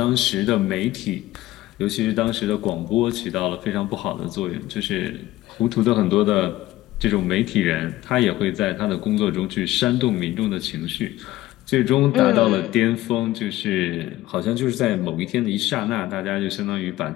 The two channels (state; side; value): quieter; right; 16.3 dB